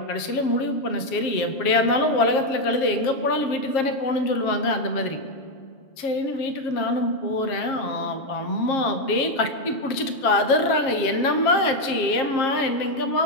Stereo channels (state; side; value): late; right; 7.4 ms